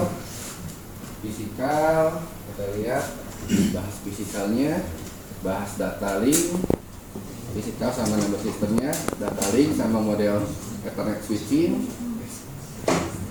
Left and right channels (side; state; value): both; identical; correlation 1.00